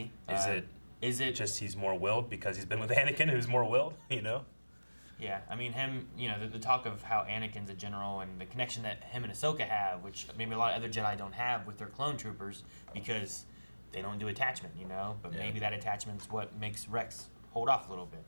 Is it just he's more willed because he's been with Anakin, who's more willed, you know? Yeah, I mean him. You know, the talk of how Anakin's a general and the connection that him and Ahsoka have, which maybe a lot of other Jedi don't have with their clone troopers because they don't do attachment. You know, but Yeah. maybe that attachment's what makes Rex hold off a little bit.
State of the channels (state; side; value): inverted; both; correlation -1.00